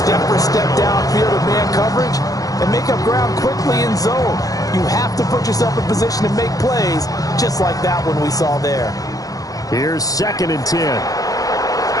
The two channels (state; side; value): late; right; 0.17 ms